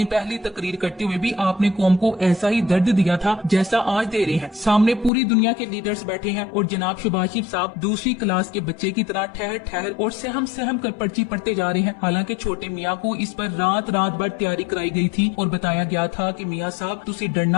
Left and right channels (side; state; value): right; drops out; at 5.1 s